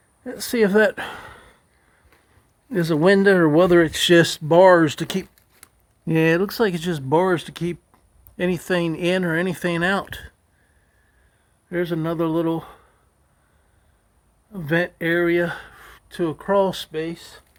Let's see if that is a window or whether it's just bars to keep. Yeah, it looks like it's just bars to keep anything in or anything out. There's another little vent area to a crawl space.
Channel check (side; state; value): both; identical; correlation 1.00